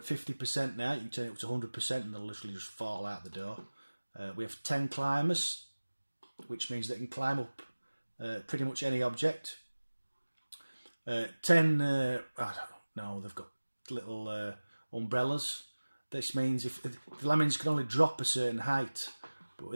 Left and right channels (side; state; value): both; inverted; correlation -1.00